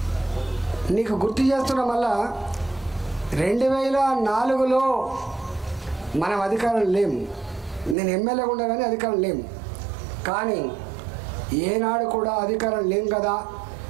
నీకు గుర్తు చేస్తున్నా, మళ్ళా 2004లో మనం అధికారం లేము. నేను ఎమ్మెల్యేగా ఉండగానే అధికారం లేము. కానీ ఏనాడు కూడా అధికారం లేం కదా,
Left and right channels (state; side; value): drops out; left; at 8.0 s